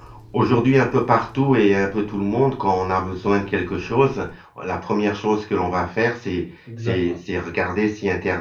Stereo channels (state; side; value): identical; both; correlation 1.00